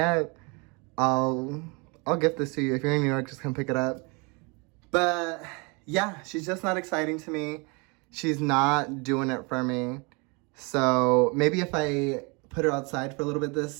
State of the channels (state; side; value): quieter; left; 30.3 dB